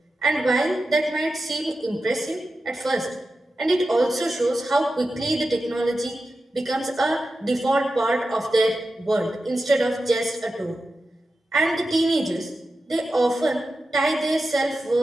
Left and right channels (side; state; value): both; normal; correlation 0.92